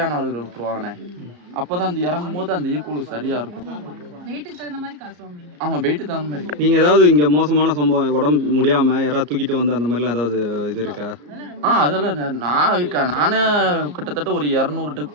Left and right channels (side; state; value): left; late; 34 ms